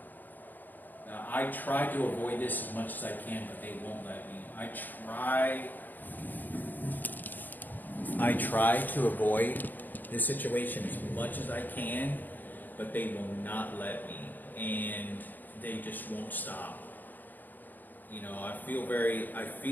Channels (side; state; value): right; late; 0.087 ms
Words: Now, I try to avoid this as much as I can, but they won't let me. I try to avoid this situation as much as I can, but they will not let me, and they just won't stop. You know, I